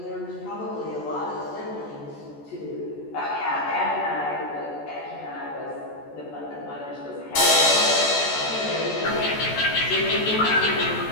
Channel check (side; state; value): right; late; 14 ms